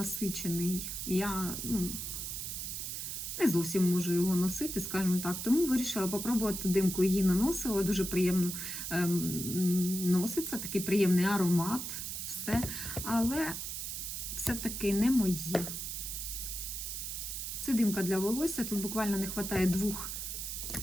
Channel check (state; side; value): noise; right; hiss, 5 dB below the sound